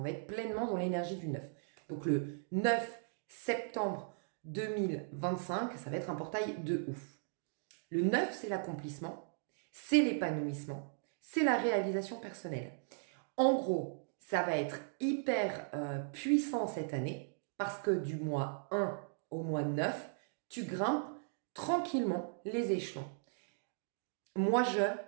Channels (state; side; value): silent; left; digital silence